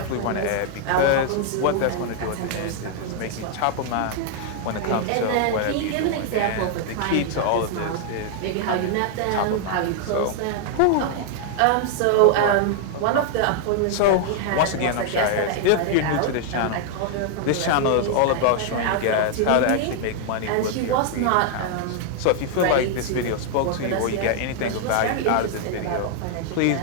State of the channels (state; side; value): different; both; correlation 0.00